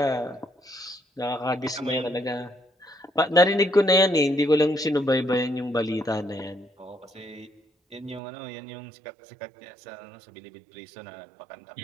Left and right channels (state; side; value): drops out; left; at 8.2 s